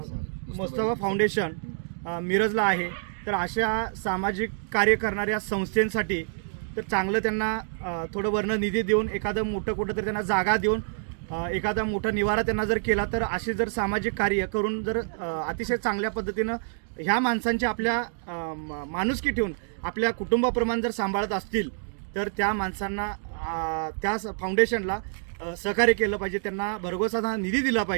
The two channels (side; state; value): left; silent; digital silence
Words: मुस्तफा फाउंडेशन मिरजला आहे, तर अशा सामाजिक कार्य करणाऱ्या संस्थांसाठी तर चांगलं त्यांना थोडं वर्ण निधी देऊन, एखादं मोठं कुठं तर त्यांना जागा देऊन, एखादा मोठा निवारा त्यांना जर केला, तर असे जर सामाजिक कार्य करून जर अतिशय चांगल्या पद्धतीनं ह्या माणसांची आपल्या माणुसकी ठेवून आपल्या कुटुंबाप्रमाणे जर सांभाळत असतील, तर त्या माणसांना त्या फाउंडेशनला सहकार्य केलं पाहिजे, त्यांना भरघोसा निधी दिला